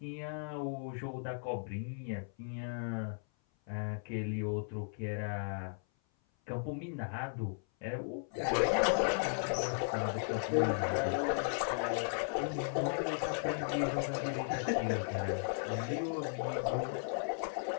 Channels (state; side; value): silent; right; 54 dB below the other